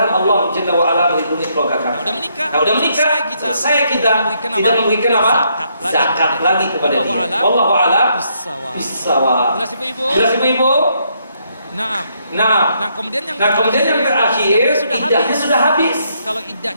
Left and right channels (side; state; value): both; inverted; correlation -0.74